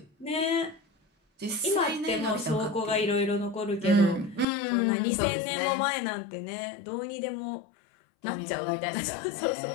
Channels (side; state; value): right; drops out; at 4.5 s